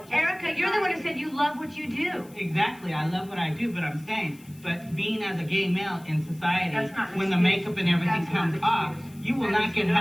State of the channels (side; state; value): left; noise; hiss, 25 dB below the sound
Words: Erica, you're the one who said you love what you do. Exactly, I love what I do, but I'm saying, but being as a gay male in society, when the makeup and everything comes off, you will not get